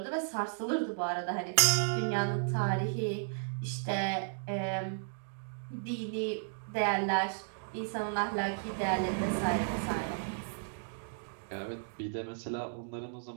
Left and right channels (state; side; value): silent; left; digital silence